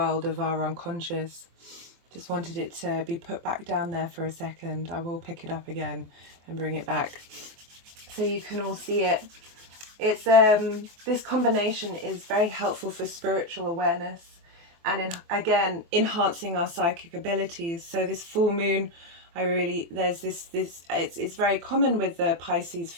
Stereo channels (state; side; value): late; left; 24 ms